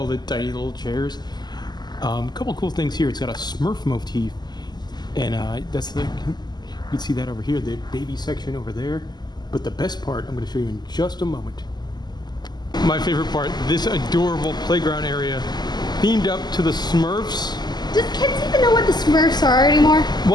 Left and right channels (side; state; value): right; late; 0.21 ms